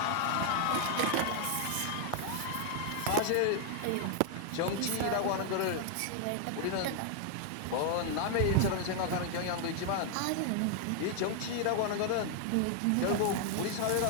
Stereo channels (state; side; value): different; both; correlation 0.00